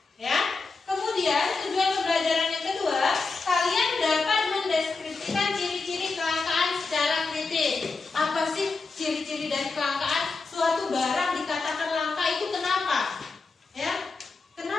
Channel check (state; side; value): quieter; right; 4.1 dB